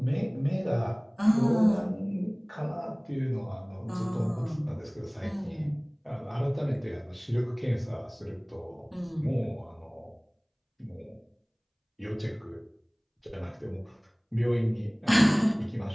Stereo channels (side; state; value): both; identical; correlation 1.00